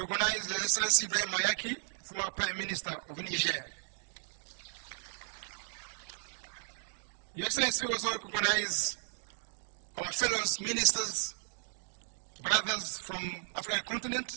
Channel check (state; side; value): silent; left; digital silence